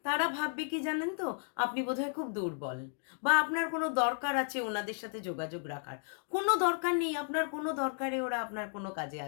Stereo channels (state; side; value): silent; right; 55 dB below the other